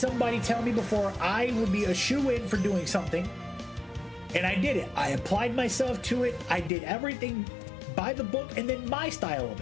tell me before I would be a shoe-in for doing something, and I did it. I applied myself to it. I did everything by the book and then my style of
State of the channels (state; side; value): drops out; right; at 6.7 s